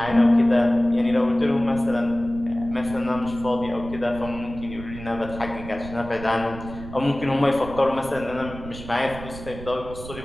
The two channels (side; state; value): right; noise; rumble, 13 dB below the sound